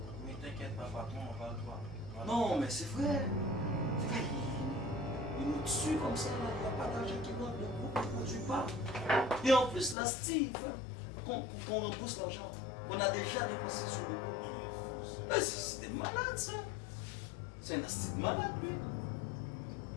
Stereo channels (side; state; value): right; drops out; at 10.0 s